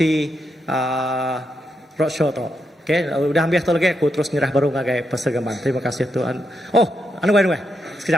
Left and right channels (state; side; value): normal; both; correlation 0.82